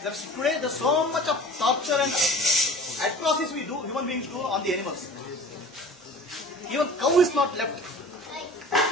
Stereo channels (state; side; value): normal; both; correlation 0.42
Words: today there's so much of torture and atrocities we do, human beings do on the animals. Even cow is not left.